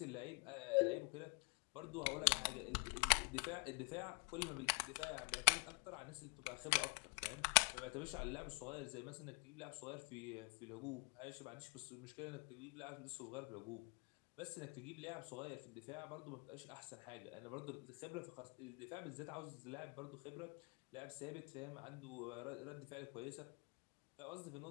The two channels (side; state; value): right; quieter; 33.9 dB